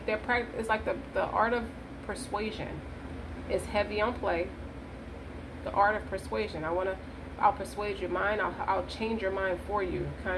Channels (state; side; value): identical; both; correlation 1.00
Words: like the art of persuasion is heavy on play. The art of persuasion. I'll persuade your mind, I'll change your mind for you,